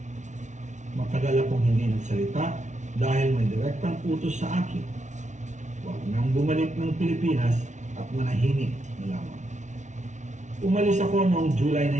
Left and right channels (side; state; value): left; late; 0.35 ms